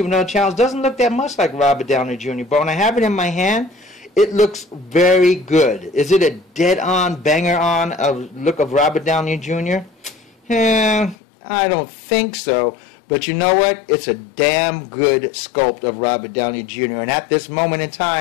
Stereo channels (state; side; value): drops out; right; at 11.2 s